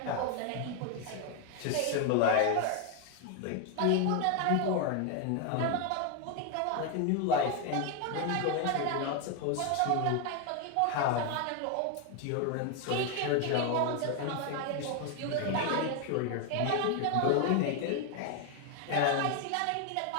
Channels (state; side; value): different; both; correlation 0.01